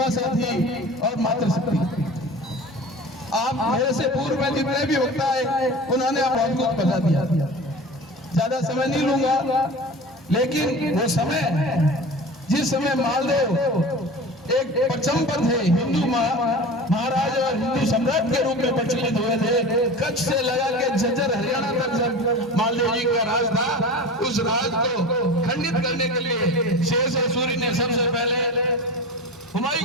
साथी और मातृशक्ति, आप मेरे से पूर्व में जितने भी वक्ता है उन्होंने आप बहुत कुछ बता दिया। ज्यादा समय नहीं लूंगा, लेकिन वो समय जिस समय मालदेव एक परचम पर थे, हिंदू महाराज और हिंदू सम्राट के रूप में प्रचलित हुए थे, कच्छ से लगा के झज्जर हरियाणा तक जब मालदेव जी का राज था, उस राज को खंडित करने के लिए शेरशाह सूरी ने सबसे पहले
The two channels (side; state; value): both; normal; correlation 0.34